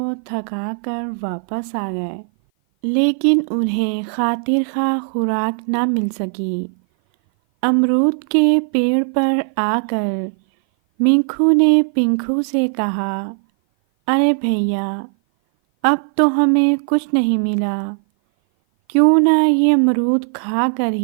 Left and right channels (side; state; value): left; silent; 57 dB below the other